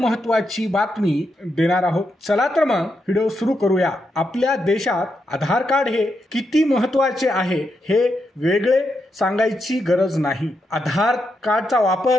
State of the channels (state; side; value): normal; both; correlation 0.83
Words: बातमी देणार आहोत। चला तर मग व्हिडिओ सुरू करूया। आपल्या देशात आधार कार्ड हे किती महत्त्वाचे आहे हे वेगळे सांगायची गरज नाही। आधार कार्डचा